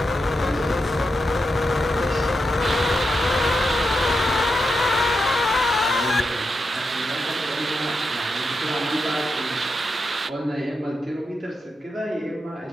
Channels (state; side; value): normal; both; correlation 0.86